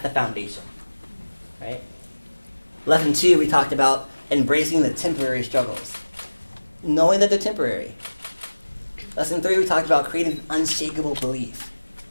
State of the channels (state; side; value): inverted; both; correlation -1.00